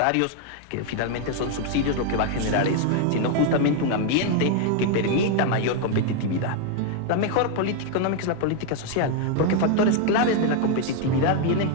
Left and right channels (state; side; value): different; both; correlation 0.01